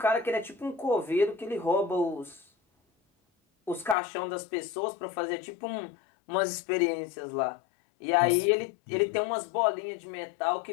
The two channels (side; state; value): right; drops out; at 4.0 s